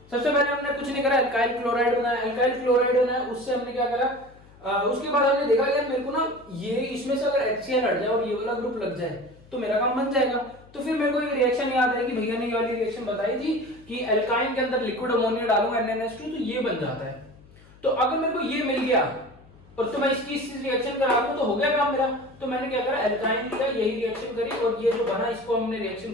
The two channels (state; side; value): noise; left; hum, 25 dB below the sound